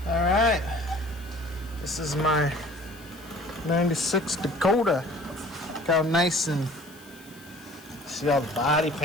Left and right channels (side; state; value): left; noise; hiss, 23 dB below the sound